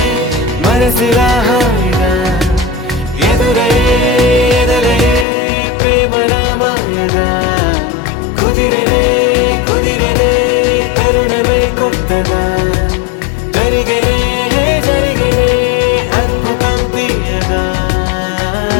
మనసులా హాయిగా ఎదురయే ఎదరయే ప్రేమలా మాయగా కుదిరినే కుదిరినే తరుణమే కొత్తగా జరిగినే జరిగినే అద్భుతం తీయగా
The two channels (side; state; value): right; drops out; at 5.2 s